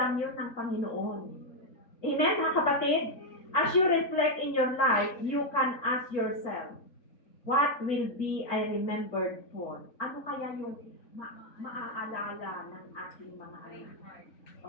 yun ng Panginoon. Amen, mga kapatid? As you reflect in your life, you can ask yourself, what will be I remembered for? Ano kaya yung maaalala ng ating mga anak?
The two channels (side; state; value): right; late; 3.6 ms